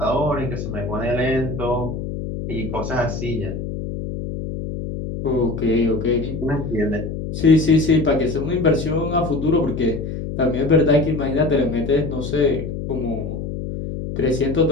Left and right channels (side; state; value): left; noise; hum, 6 dB below the sound